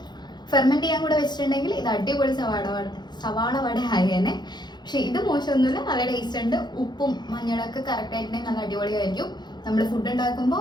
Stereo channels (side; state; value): right; late; 0.21 ms